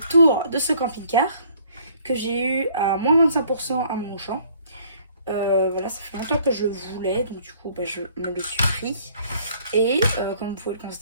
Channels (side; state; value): both; inverted; correlation -0.59